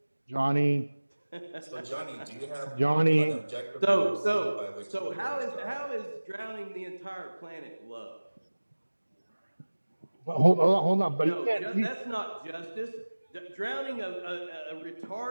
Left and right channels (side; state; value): both; inverted; correlation -1.00